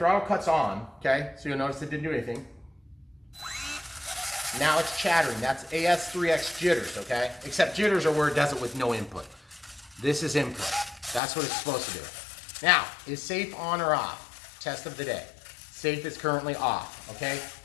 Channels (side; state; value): right; drops out; at 11.2 s